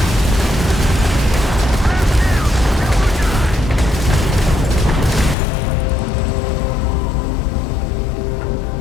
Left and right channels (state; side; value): drops out; right; at 5.4 s